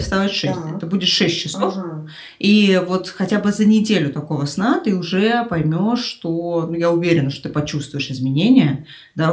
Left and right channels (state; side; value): identical; both; correlation 1.00